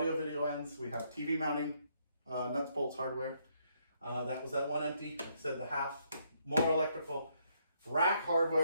video ends. We have TV mounting, nuts, bolts, hardware. That was that one empty. Like I said, the half, more electrical. Rack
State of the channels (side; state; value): both; inverted; correlation -0.73